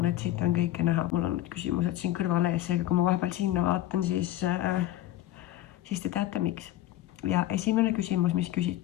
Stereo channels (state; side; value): quieter; right; 14.2 dB